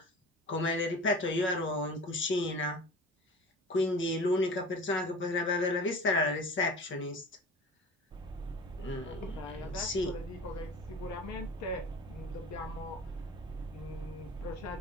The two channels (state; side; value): normal; both; correlation 0.39